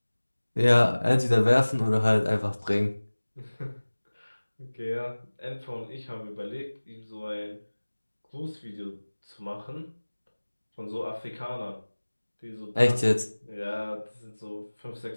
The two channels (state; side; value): inverted; both; correlation -1.00